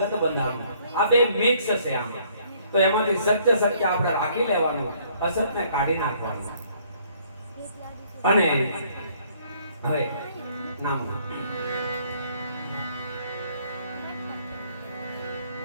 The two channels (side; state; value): both; inverted; correlation -0.63